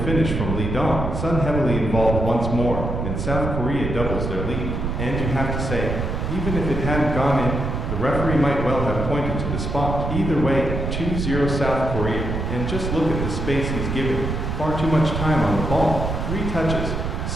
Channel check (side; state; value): right; noise; rumble, 3 dB below the sound